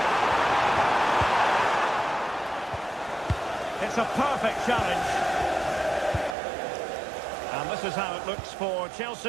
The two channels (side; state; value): left; drops out; at 6.4 s